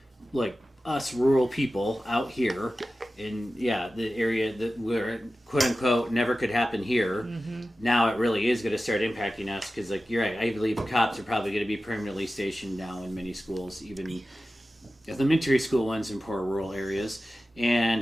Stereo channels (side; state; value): both; normal; correlation 0.95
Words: like us rural people out here in, the area that where, quote-unquote, never could happen here. Mm-hmm. Now it really is going to start impacting us because, you're right, I believe cops are probably going to be permanently stationed now in many schools, even elementary school ones in poor rural areas. And